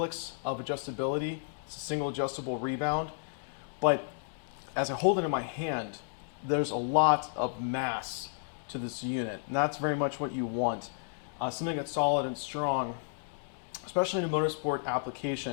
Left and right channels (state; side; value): silent; right; 56 dB below the other